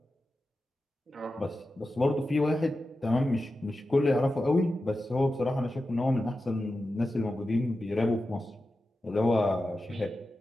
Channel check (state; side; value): normal; both; correlation 0.92